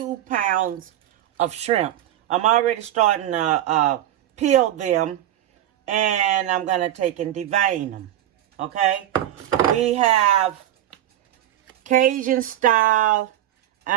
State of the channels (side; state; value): left; quieter; 12.4 dB